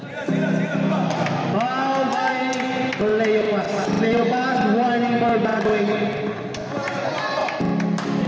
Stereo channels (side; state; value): both; identical; correlation 1.00